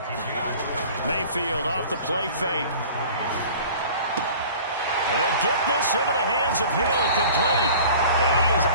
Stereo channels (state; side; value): inverted; both; correlation -0.44